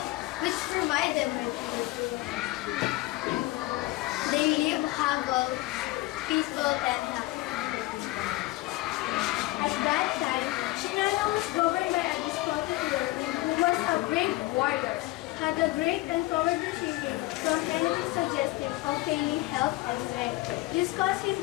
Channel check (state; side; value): quieter; right; 19.3 dB